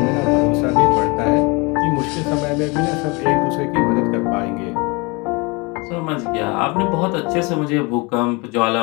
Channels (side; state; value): right; quieter; 27.8 dB